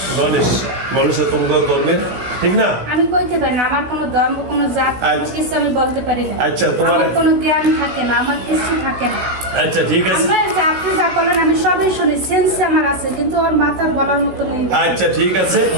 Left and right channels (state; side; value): late; left; 16 ms